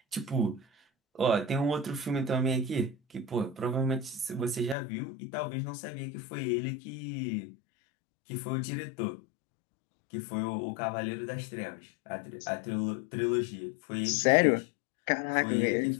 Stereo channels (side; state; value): right; drops out; at 4.8 s